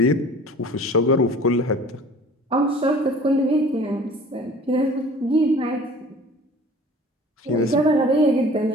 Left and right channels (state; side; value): normal; both; correlation 0.47